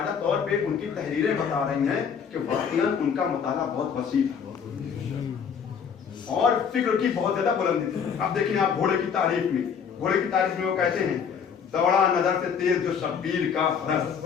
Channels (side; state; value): right; quieter; 6.9 dB